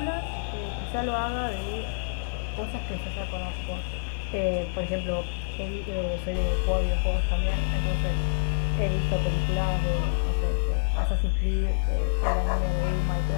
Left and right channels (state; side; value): silent; right; digital silence